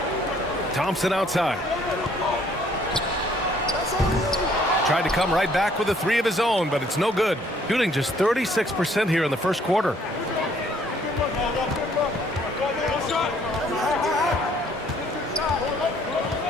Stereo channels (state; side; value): normal; both; correlation 0.62